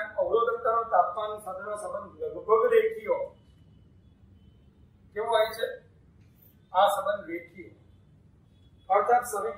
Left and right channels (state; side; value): identical; both; correlation 1.00